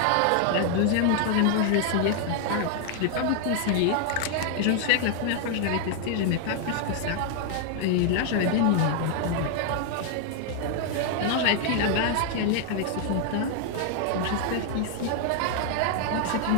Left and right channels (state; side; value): different; both; correlation 0.00